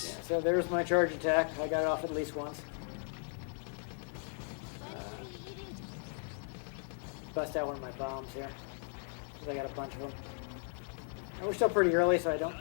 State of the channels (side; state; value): right; silent; 54 dB below the other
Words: Yeah, so there's my charge attack. I got it off at least once. Bust out one of my bombs here, because I got a bunch of them. We're still pretty early, so I don't